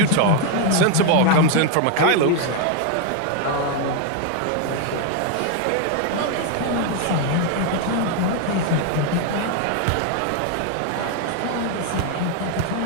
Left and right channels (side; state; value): both; different; correlation 0.01